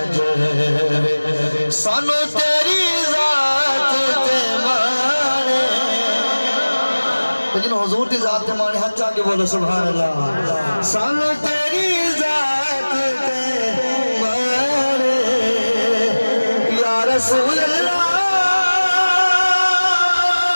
सानू तेरी जात ते माने लेकिन हुजूर की जात ते माने हाथ आके बोलो सुभान अल्लाह सानू तेरी जात ते माने या रसूल अल्लाह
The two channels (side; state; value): both; inverted; correlation -1.00